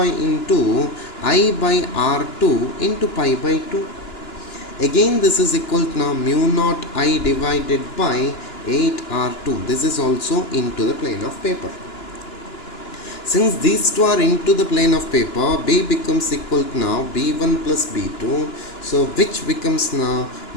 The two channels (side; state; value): right; late; 2.9 ms